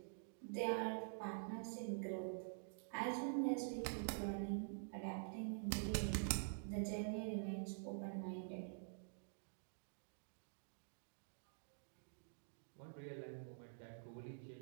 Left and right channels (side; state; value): left; silent; digital silence